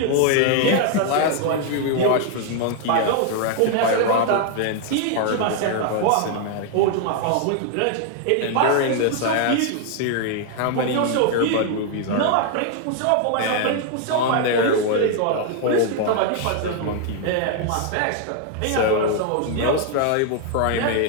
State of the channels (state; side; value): different; both; correlation 0.00